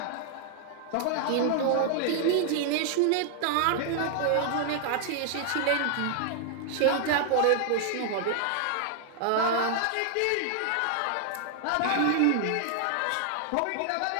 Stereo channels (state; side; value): different; both; correlation 0.00